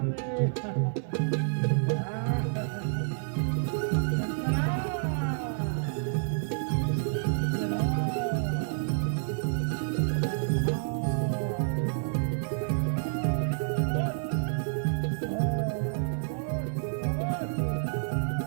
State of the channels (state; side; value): silent; left; digital silence